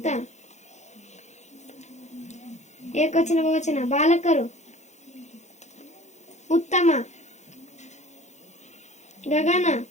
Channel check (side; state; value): right; late; 0.33 ms